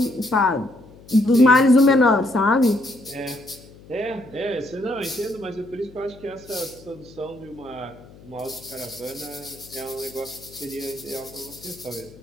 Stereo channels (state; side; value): noise; left; hum, 22 dB below the sound